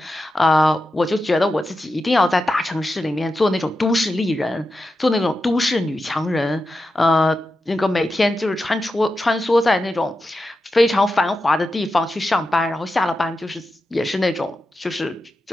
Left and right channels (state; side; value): normal; both; correlation 0.90